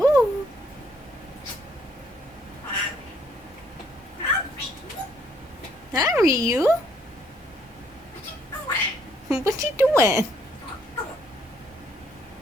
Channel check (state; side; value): normal; both; correlation 0.67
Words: Hi, Ryu. What you doing?